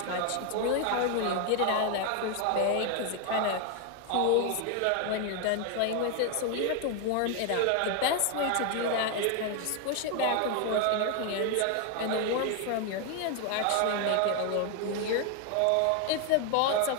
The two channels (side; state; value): both; different; correlation 0.01